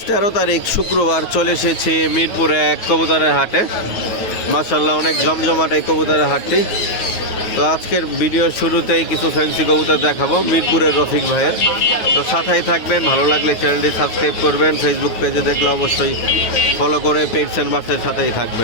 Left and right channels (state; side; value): late; right; 9.3 ms